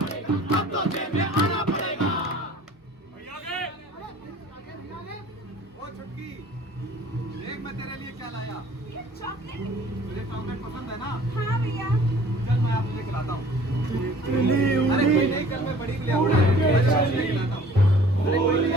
अब तो जेब में आना पड़ेगा। ओ छुटकी, देख मैं तेरे लिए क्या लाया। ये चॉकलेट। तुझे चॉकलेट पसंद है ना? हाँ भैया। चल मैं आपको खिलाता हूँ। अरे कोई नहीं, कल मैं बड़ी के लिए आऊंगा, खिलाता हूँ। फूल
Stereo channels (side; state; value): both; normal; correlation 0.51